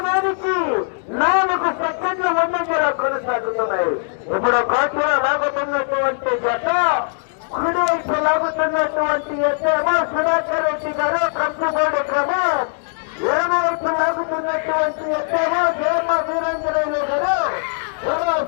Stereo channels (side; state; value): right; silent; digital silence